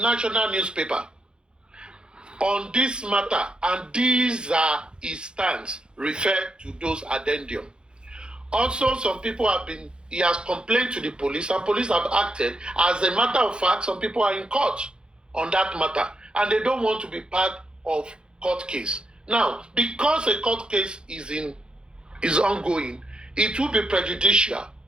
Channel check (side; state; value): left; late; 0.050 ms